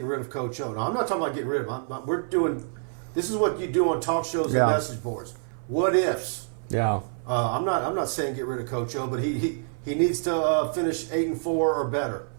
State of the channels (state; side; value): silent; left; 59 dB below the other